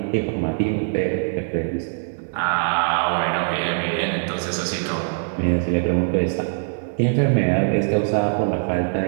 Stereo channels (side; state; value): left; silent; digital silence